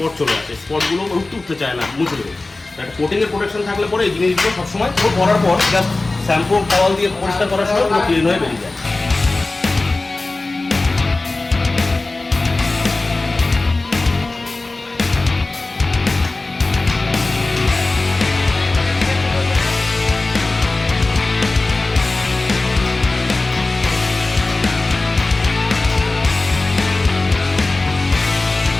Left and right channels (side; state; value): right; quieter; 3.2 dB